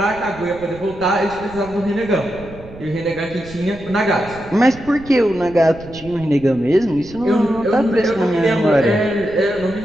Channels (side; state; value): right; noise; rumble, 18 dB below the sound